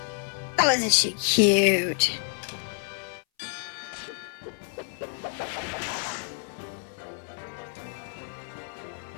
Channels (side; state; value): right; silent; 59 dB below the other